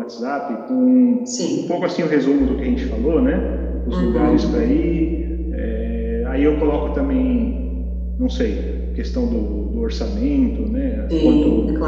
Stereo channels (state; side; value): identical; both; correlation 1.00